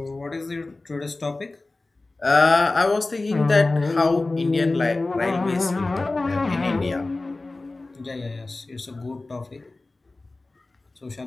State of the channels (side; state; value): right; quieter; 3.2 dB